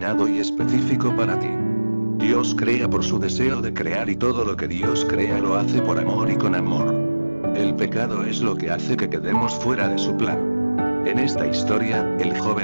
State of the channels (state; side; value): inverted; both; correlation -1.00